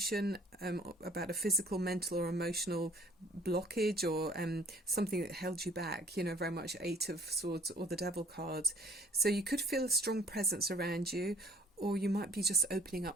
about a physical, mental or emotional blockage, or something that held you back, you know, very much Eight of Swords or the Devil card. So you could feel a strong presence around you, or you might be just opening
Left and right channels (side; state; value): both; normal; correlation 0.56